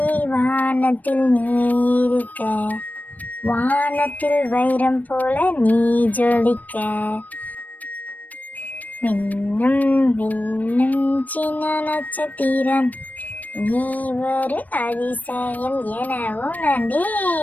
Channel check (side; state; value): right; late; 0.079 ms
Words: வானத்தில் நீ இருக்க, வானத்தில் வைரம் போல நீ ஜொலிக்க. மின்னும் மின்னும் சின்ன நட்சத்திரம், நீ ஒரு அதிசயம் என